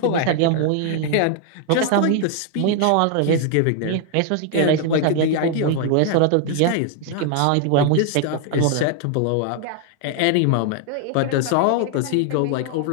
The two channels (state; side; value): different; both; correlation 0.00